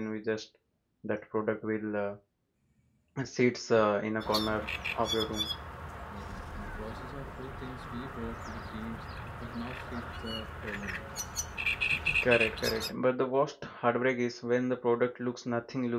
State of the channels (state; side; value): identical; both; correlation 1.00